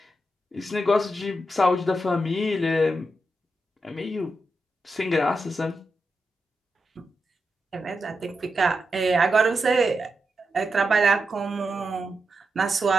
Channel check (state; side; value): normal; both; correlation 0.87